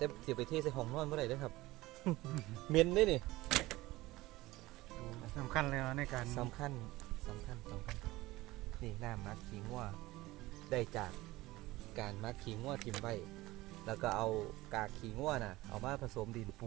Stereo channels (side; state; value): left; quieter; 18.9 dB